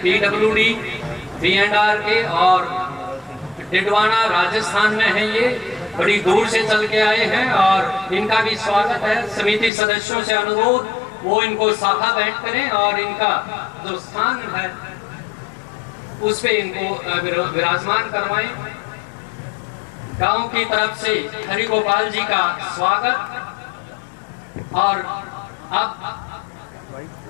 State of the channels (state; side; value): drops out; right; at 9.7 s